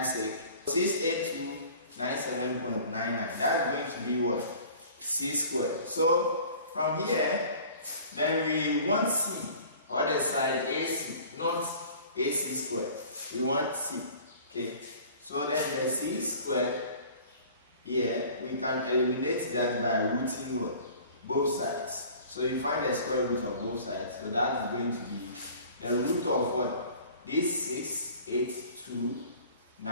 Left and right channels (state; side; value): inverted; both; correlation -0.47